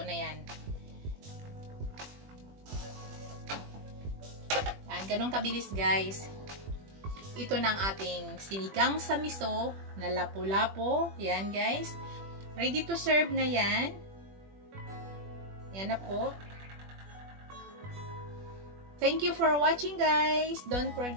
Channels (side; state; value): left; late; 21 ms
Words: na yan. Yan, ganun kabilis guys. Ito na ang ating sinigang sa miso na lapu-lapo. Yan guys. Ready to serve na yan. Yan na po. Thank you for watching guys. Don't